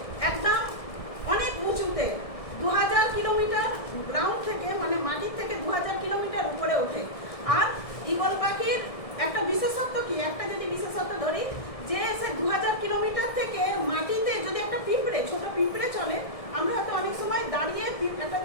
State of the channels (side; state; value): right; late; 1.6 ms